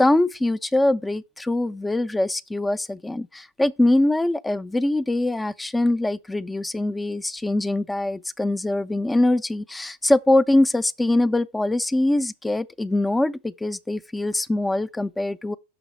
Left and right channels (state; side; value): normal; both; correlation 0.98